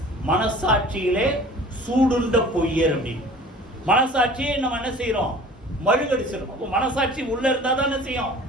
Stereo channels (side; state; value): both; normal; correlation 0.45